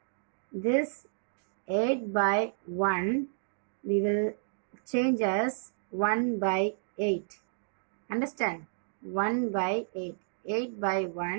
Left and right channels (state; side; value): silent; left; digital silence